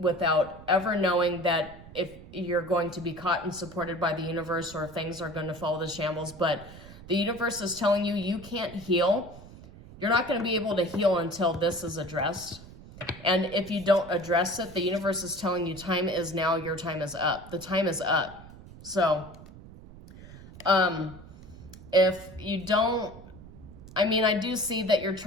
ever knowing that if you're going to be caught and supported by the universe, or if things are going to fall to shambles. But the universe is telling you you can't heal. You're not going to be able to heal until this is addressed. And if you don't address it, the universe is telling you time is now, your time is up. The time is up. So if you don't, I do see that you're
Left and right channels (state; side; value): noise; right; rumble, 17 dB below the sound